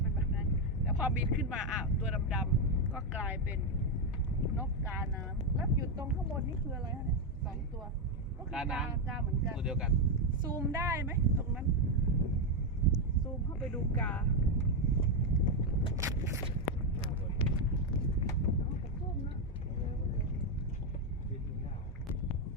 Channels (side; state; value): both; normal; correlation 0.05